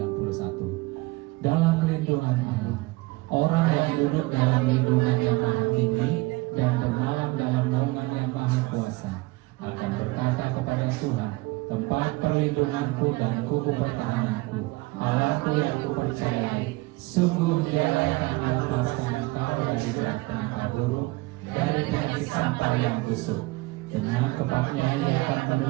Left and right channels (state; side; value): quieter; left; 22.2 dB